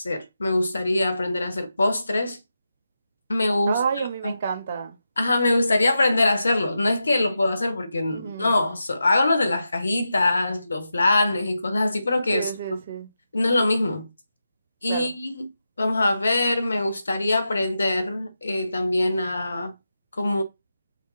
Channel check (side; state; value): both; inverted; correlation -0.89